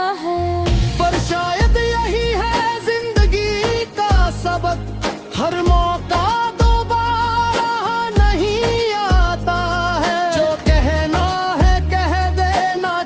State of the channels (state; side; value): identical; both; correlation 1.00